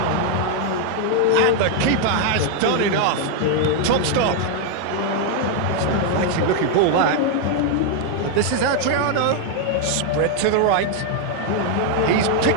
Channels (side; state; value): both; different; correlation 0.00